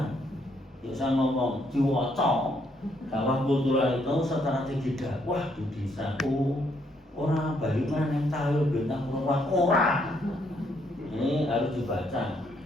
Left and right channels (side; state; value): both; normal; correlation 0.72